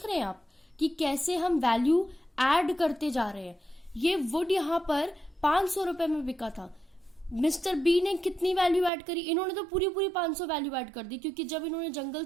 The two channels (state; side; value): drops out; left; at 8.9 s